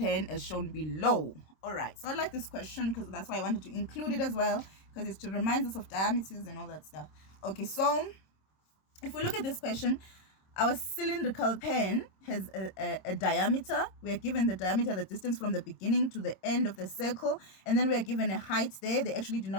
as shown below. All right, so I like this question because that's why I wanted to include it as well, because it reminds us of diameters and all that stuff. Okay, so if we look at this question, our cylindrical pan has a diameter. We are given the diameter, the distance from the beginning to the end of the circle, and then we are given a height there. They actually did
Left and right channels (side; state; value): right; late; 26 ms